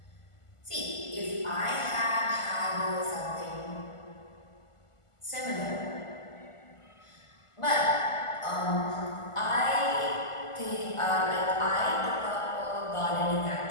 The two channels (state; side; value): late; right; 1.5 ms